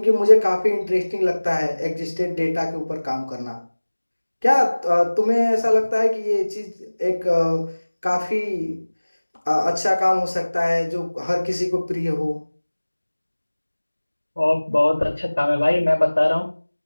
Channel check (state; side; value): inverted; both; correlation -1.00